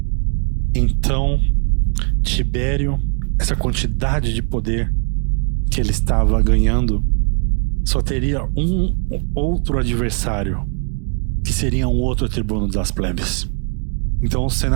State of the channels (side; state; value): left; quieter; 38.6 dB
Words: Então, Tibério, essa quantidade de poder que ele estava ganhando, só teria um outro adversário, que seria um outro tribuno das plebes. Então o